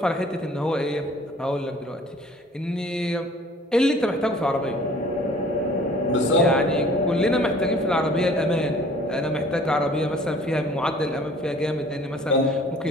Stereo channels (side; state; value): both; normal; correlation 0.52